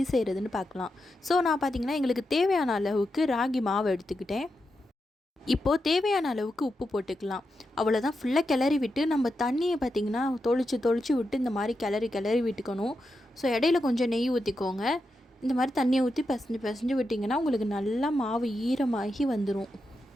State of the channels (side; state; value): both; normal; correlation 0.87